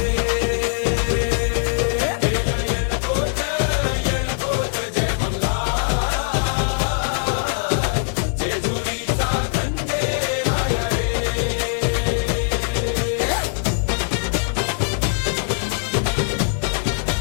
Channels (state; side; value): silent; right; digital silence